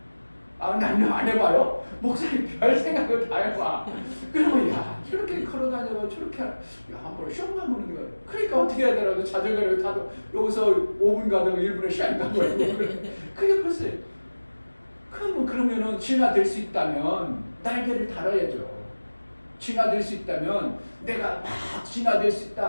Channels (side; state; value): both; inverted; correlation -1.00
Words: 나는 안 해봐요? 목사님 별 생각을 다 해봐. 그러면 야 저렇게 걸어다녀서 저렇게 한번 시험 가보는 거야. 그러니까 어떻게 해야 되라고 자전거를 타도 여기서 5분 가다가 1분에 시간 가고 그게 벌써 그러면은 진화될 수 있다면 날개를 달아야죠. 진화될 수 있다면 내가 막 진화될 수